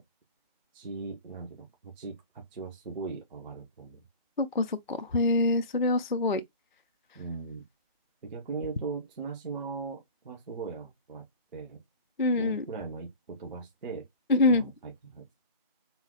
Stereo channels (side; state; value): both; inverted; correlation -0.36